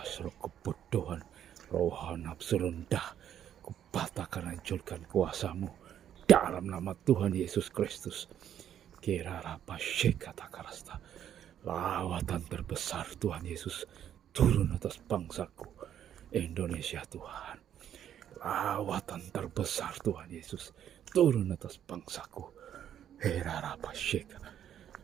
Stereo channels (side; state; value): left; quieter; 10.1 dB